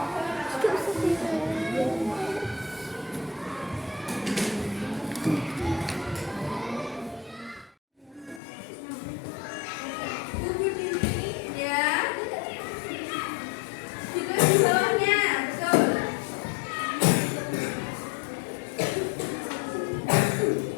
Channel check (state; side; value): drops out; right; at 8.4 s